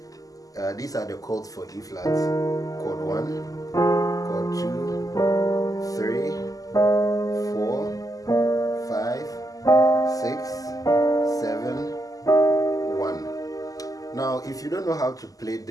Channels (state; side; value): late; right; 0.17 ms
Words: these are the chords for E flat: chord 1, chord 2, 3, 4, 5, 6, 7, 1. Now, if you don't know how to play